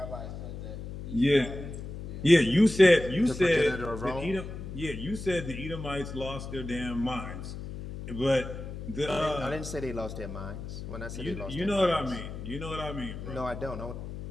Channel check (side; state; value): left; noise; hum, 9 dB below the sound